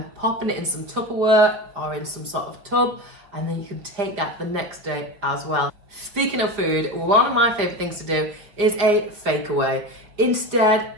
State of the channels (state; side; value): late; left; 5.1 ms